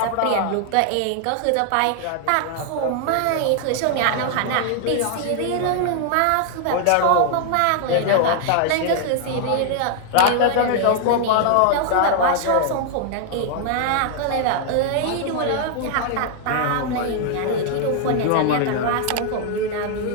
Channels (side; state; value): both; different; correlation 0.00